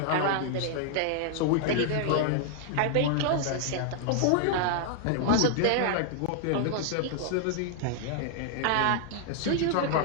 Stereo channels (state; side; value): different; both; correlation 0.00